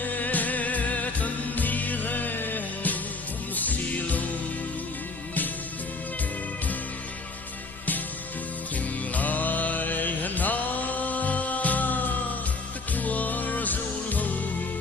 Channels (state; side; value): quieter; right; 3.6 dB